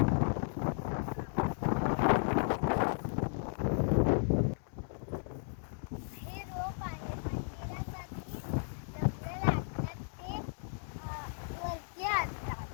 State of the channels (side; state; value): right; silent; digital silence